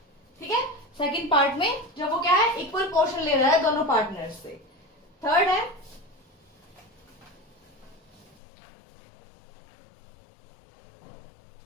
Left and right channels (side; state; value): right; drops out; at 8.3 s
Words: ठीक है, सेकंड पार्ट में जब वो क्या है इक्वल पोर्शन ले रहा है दोनों पार्टनर्स से। थर्ड है